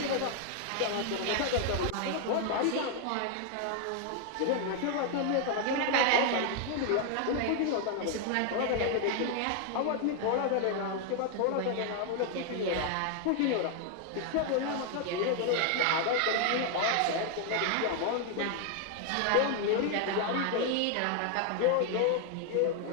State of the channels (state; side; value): different; both; correlation 0.00